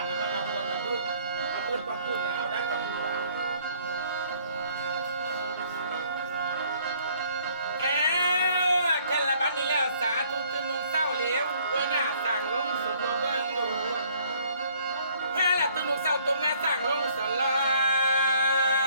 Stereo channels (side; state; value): both; inverted; correlation -0.61